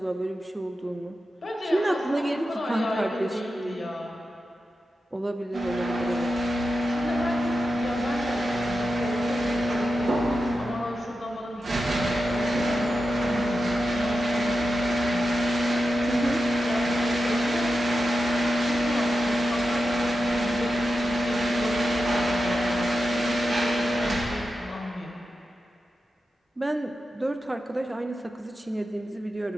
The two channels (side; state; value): both; normal; correlation 0.90